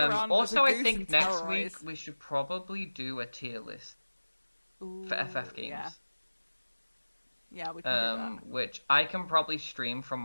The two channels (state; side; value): inverted; both; correlation -1.00